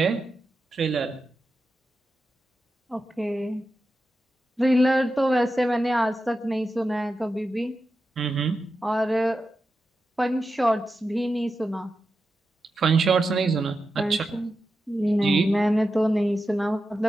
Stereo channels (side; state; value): both; normal; correlation 0.90